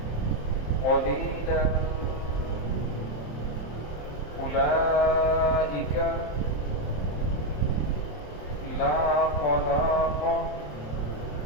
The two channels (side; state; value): right; late; 27 ms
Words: قليلا أولئك لا خلاق